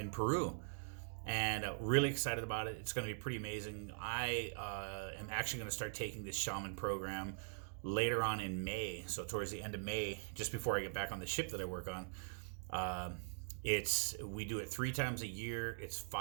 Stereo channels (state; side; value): silent; left; digital silence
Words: Peru, and really excited about it. It's going to be pretty amazing. I am actually going to start taking this shaman program later on in May, so towards the end of May, just before I get back on the ship that I work on. We do it 3 times a year. It's